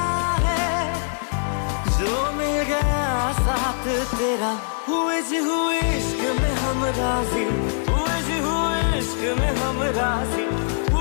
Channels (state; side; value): silent; right; 64 dB below the other